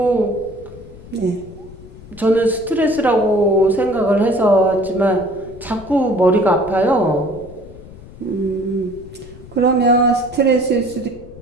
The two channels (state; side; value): noise; left; rumble, 18 dB below the sound